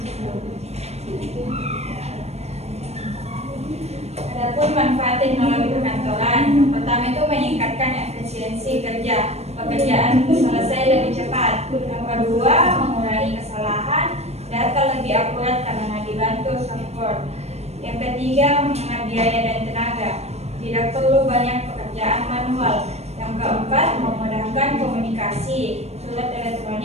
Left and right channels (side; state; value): left; late; 0.31 ms